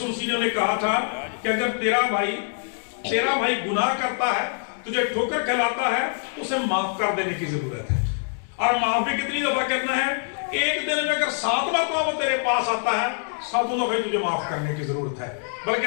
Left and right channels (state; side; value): silent; right; 62 dB below the other